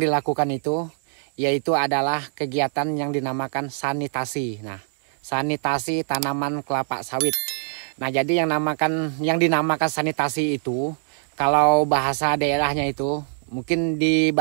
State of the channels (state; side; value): silent; left; 63 dB below the other